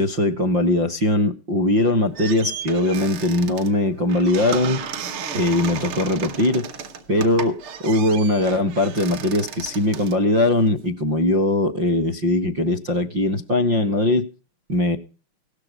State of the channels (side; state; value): left; late; 5.7 ms